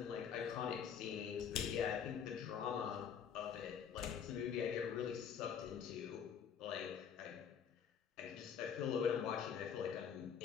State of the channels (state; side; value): quieter; right; 7.7 dB